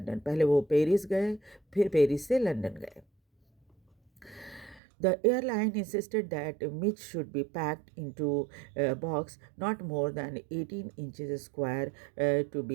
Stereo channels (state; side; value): drops out; left; at 4.8 s